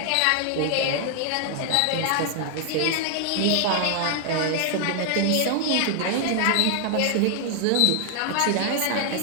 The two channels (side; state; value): both; different; correlation 0.00